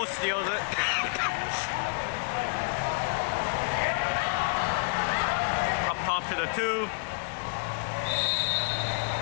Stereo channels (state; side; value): quieter; right; 35.4 dB